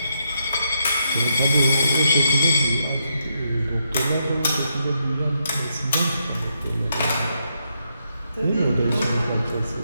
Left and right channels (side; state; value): both; inverted; correlation -0.80